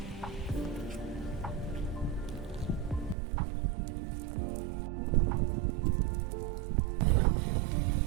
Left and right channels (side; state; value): left; drops out; at 3.2 s